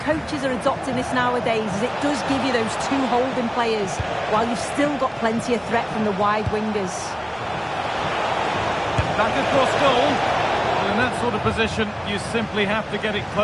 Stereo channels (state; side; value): identical; both; correlation 1.00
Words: coaches are adopting this nowadays, as it does give you those two holding players, while you've still got plenty of threat from the wide wingers. Back across goal. Well, in that sort of position, you simply have to get it